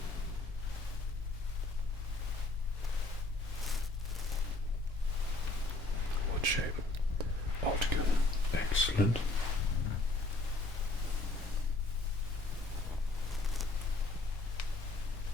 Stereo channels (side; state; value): right; quieter; 3.1 dB